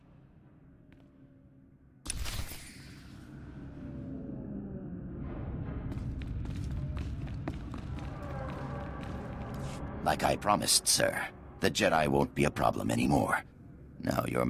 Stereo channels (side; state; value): both; identical; correlation 1.00